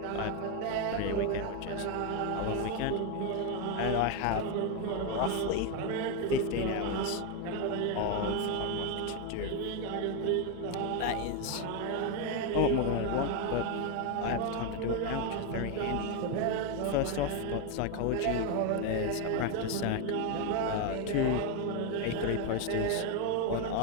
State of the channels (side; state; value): both; different; correlation 0.01